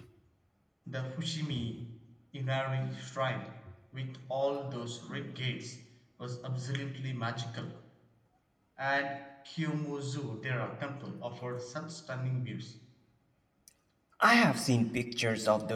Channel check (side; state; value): both; identical; correlation 1.00